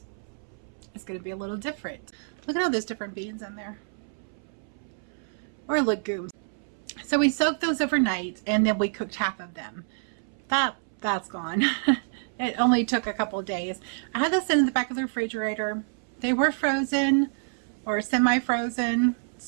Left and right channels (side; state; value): left; silent; 60 dB below the other